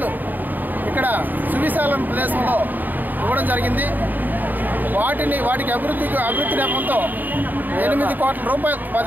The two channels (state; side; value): late; left; 0.087 ms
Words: ఇక్కడ సువిశాల ప్రదేశంలో ఇవ్వడం జరిగింది. వాటికి అభివృద్ధి నేపంతో 8 కోట్ల రూపాయలు